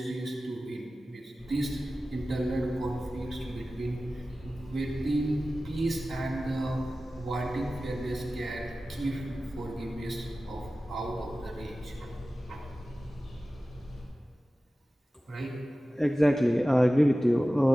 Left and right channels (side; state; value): both; normal; correlation 0.96